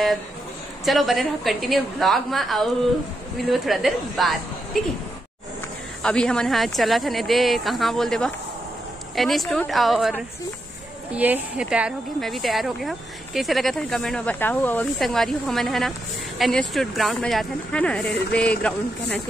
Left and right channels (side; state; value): both; normal; correlation 0.84